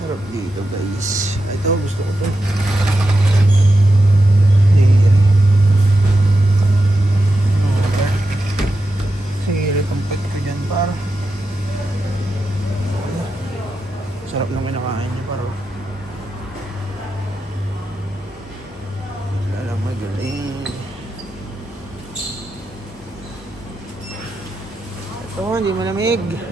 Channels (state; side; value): normal; both; correlation 0.88